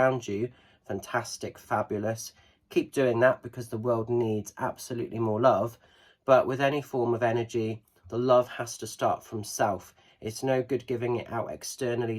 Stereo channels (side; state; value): both; identical; correlation 1.00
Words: you. Fantastic, fabulous. Keep doing that because the world needs absolutely more love. But with any form of energy, the love has to start from self. It's no good giving it out